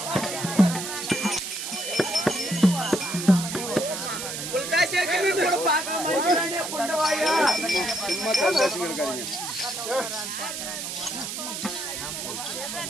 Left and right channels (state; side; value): noise; right; hiss, 5 dB below the sound